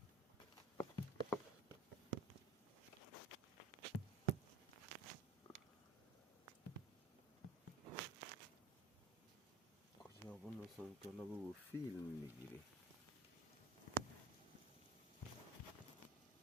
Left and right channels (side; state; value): left; quieter; 3.0 dB